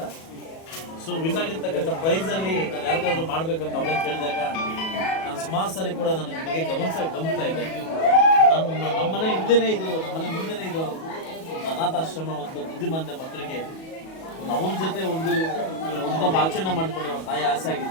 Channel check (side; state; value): right; late; 37 ms